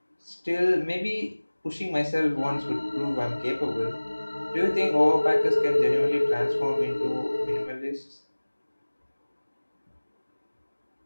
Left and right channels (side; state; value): both; inverted; correlation -1.00